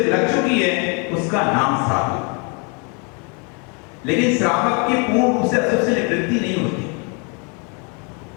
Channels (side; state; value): right; quieter; 34.6 dB